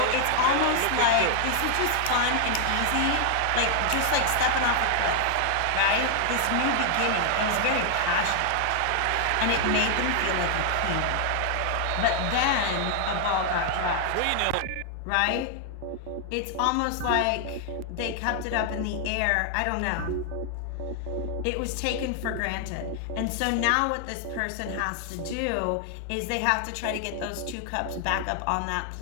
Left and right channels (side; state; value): both; different; correlation 0.00